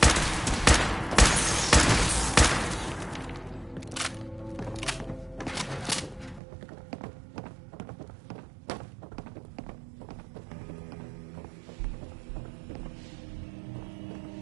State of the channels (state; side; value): drops out; left; at 6.4 s